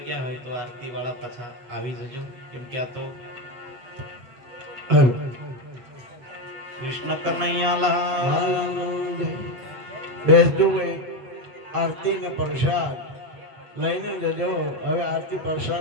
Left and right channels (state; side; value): late; left; 7.4 ms